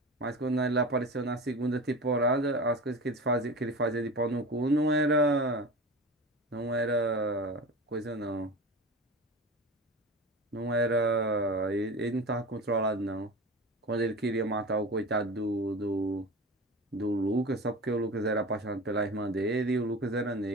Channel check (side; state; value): both; normal; correlation 0.32